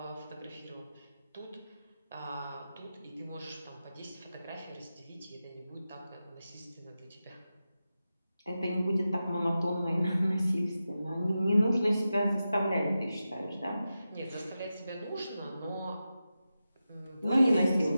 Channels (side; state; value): both; inverted; correlation -0.92